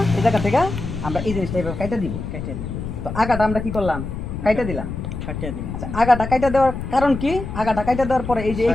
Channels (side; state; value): left; noise; rumble, 6 dB below the sound